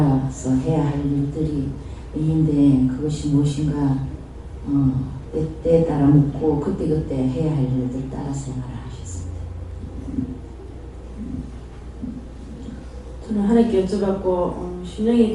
해야 할 일들이 있는데, 그것이 무엇인가 때에 따라 묻고 그때그때 해야 할 일들 따라 생활을 하셨습니다. 저는 하나님께 여쭤봤고, 심령이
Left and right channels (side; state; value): both; identical; correlation 1.00